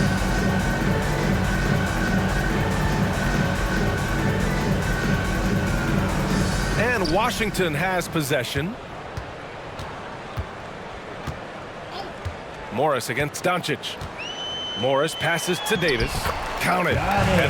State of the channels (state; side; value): identical; both; correlation 1.00